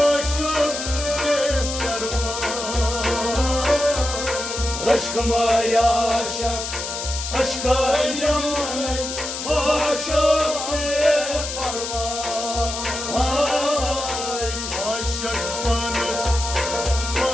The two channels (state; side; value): noise; left; hiss, 6 dB below the sound